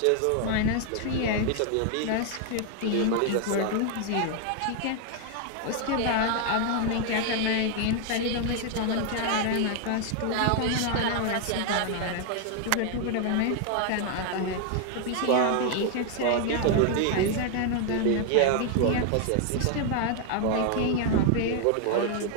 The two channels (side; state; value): both; different; correlation 0.00